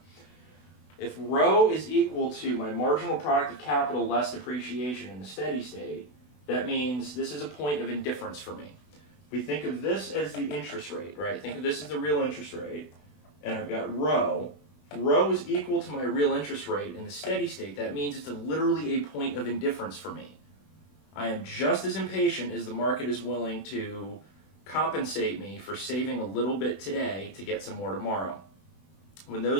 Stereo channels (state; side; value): late; right; 20 ms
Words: if rho is equal to my marginal product of capital less depreciation in the steady state, that means this is a point of indifference for me. We think of this as the interest rate, right? Think of this as the real interest rate, and I've got rho. Rho is equal to my real interest rate in the steady state. That means it's literally a point of indifference for me. I am just as impatient as the market is willing to compensate me for saving a little bit today to get some more tomorrow. When